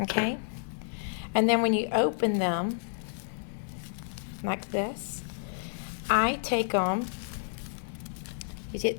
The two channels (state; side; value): silent; right; digital silence